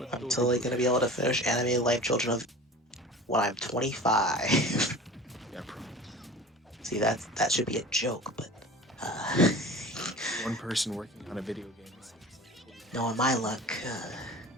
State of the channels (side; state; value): both; normal; correlation 0.38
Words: I'm totally gonna be able to finish Animated Life Children of when I'm 25. Yeah, probably. See, that should be a joke, but One person working on a video game seems like knowing my luck,